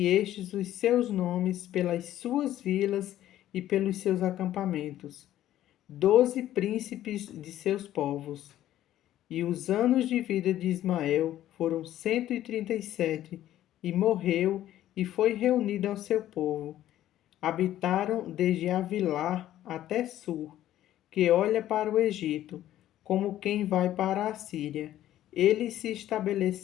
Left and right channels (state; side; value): quieter; right; 12.9 dB